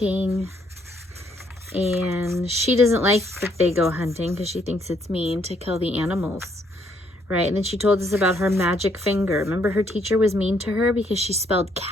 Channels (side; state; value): both; normal; correlation 0.70